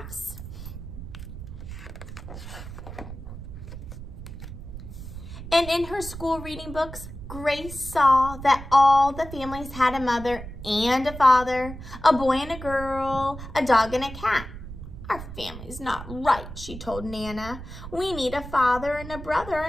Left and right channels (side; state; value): right; noise; rumble, 11 dB below the sound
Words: And in her school reading books, Grace saw that all the families had a mother and a father, a boy and a girl, a dog and a cat. Our family's not right, she told Nana. We need a father and a brother